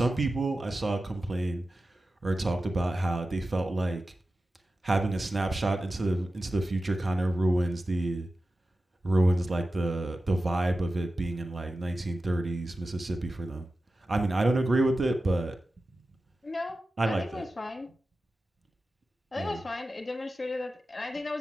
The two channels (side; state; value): both; normal; correlation 0.94